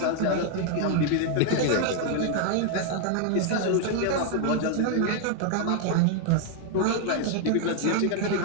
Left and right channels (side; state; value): both; different; correlation 0.00